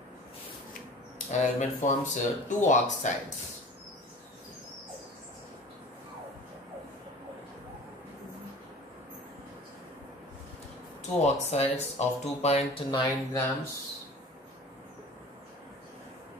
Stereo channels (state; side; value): normal; both; correlation 0.42